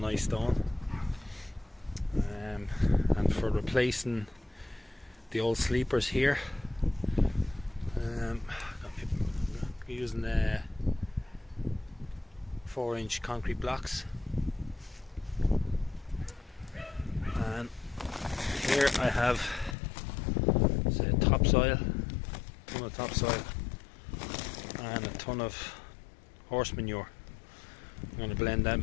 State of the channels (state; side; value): drops out; right; at 19.8 s